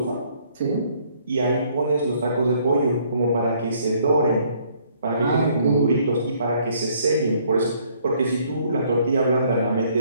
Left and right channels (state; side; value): inverted; both; correlation -0.64